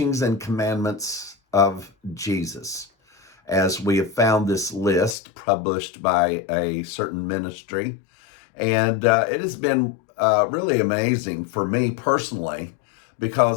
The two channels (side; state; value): right; drops out; at 5.2 s